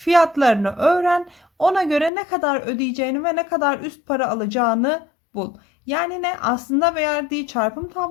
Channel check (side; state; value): right; drops out; at 2.1 s